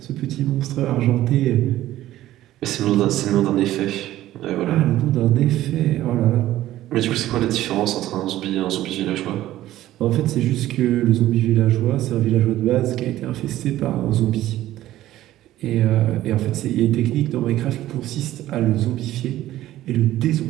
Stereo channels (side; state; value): left; quieter; 14.4 dB